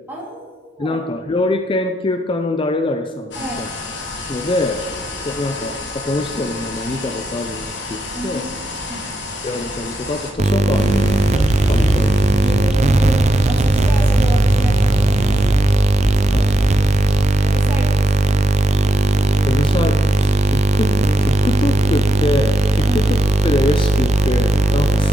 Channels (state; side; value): normal; both; correlation 0.82